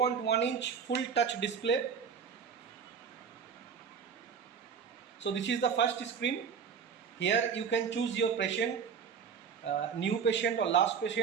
full touch display. So this is the first screen. Here you can choose your patient, new patient or last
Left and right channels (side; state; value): left; quieter; 6.7 dB